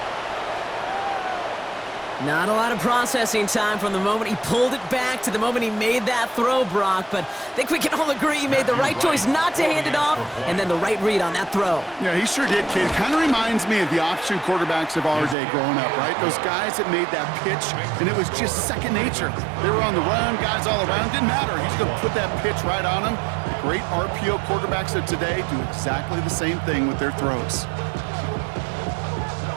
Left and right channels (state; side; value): drops out; left; at 15.4 s